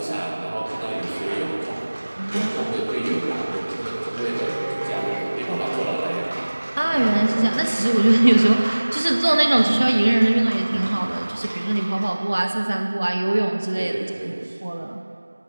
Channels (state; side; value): inverted; both; correlation -1.00